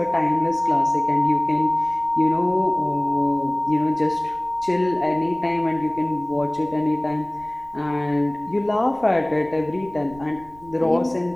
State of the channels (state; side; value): noise; right; rumble, 24 dB below the sound